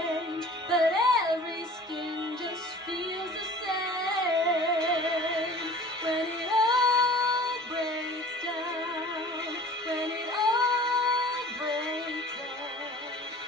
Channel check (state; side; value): normal; both; correlation 0.45